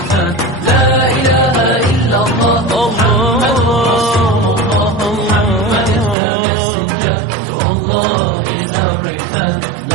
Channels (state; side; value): drops out; left; at 6.2 s